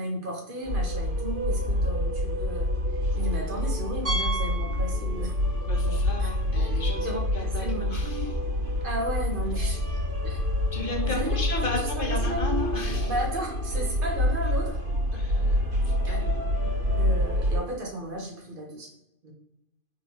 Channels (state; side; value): late; left; 2.5 ms